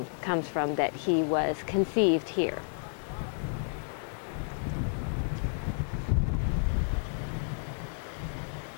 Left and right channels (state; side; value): silent; right; digital silence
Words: comes from that he was conceived here.